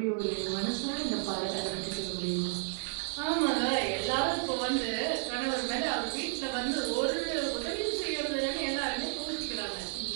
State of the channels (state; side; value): silent; left; 56 dB below the other